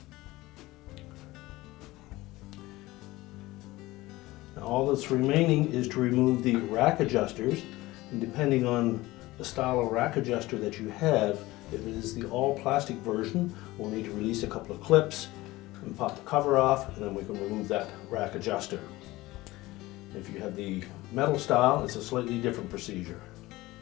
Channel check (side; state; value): right; quieter; 19.0 dB